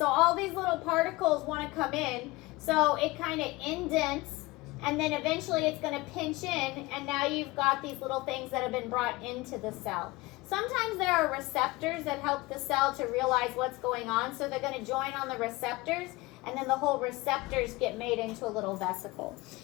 all these little particles want to come in. So it kind of indents, and then eventually it's going to pinch in, and now you've got these little things that have been brought into the cell. Sometimes there are receptors that help the cell to realize what's going on. So they're going to join on the receptors, and then the whole receptors get made into a little vesicle.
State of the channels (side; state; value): right; quieter; 21.5 dB